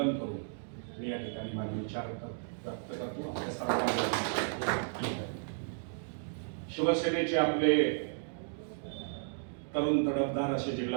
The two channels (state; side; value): silent; left; digital silence